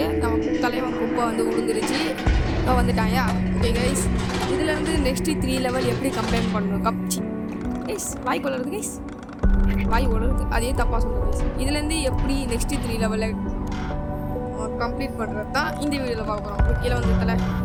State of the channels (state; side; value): identical; both; correlation 1.00